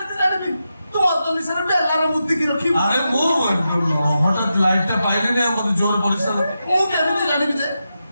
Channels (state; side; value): inverted; both; correlation -0.88